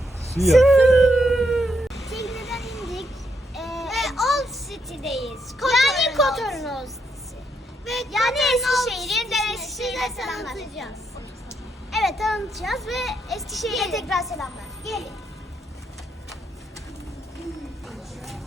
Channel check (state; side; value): normal; both; correlation 0.78